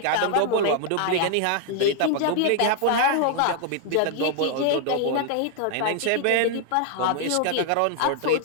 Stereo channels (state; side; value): different; both; correlation 0.00